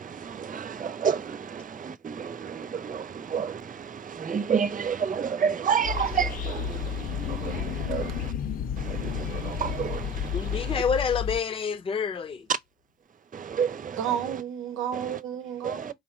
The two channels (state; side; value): normal; both; correlation 0.36